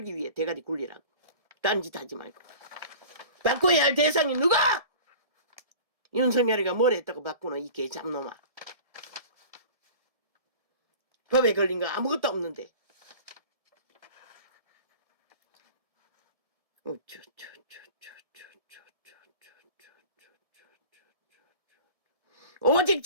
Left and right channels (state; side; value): late; left; 1.7 ms